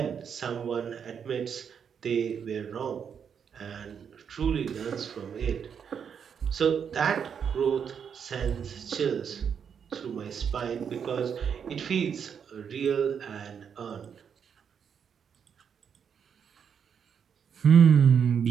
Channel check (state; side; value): quieter; left; 7.3 dB